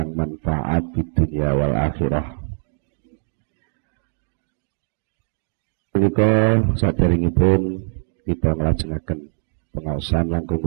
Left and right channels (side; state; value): left; silent; digital silence